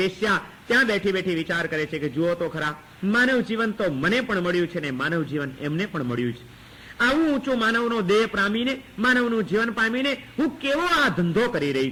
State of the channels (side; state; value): both; identical; correlation 1.00